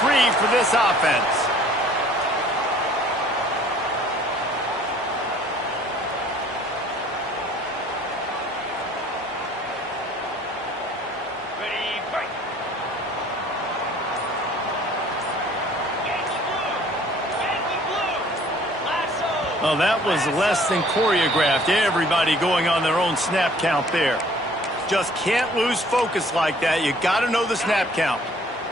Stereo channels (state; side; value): normal; both; correlation 0.55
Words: for this offense. Well, that was less than choreographed. Everybody going on their own snap count there. Just can't lose focus like that. You got to know the snap count.